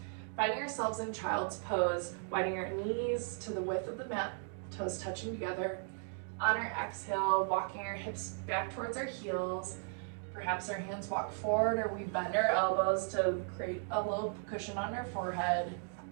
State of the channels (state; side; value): silent; left; 54 dB below the other